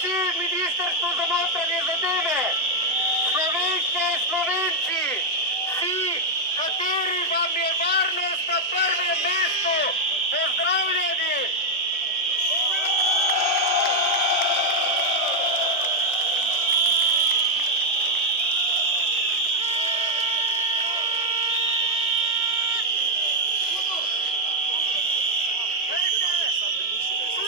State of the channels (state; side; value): normal; both; correlation 0.00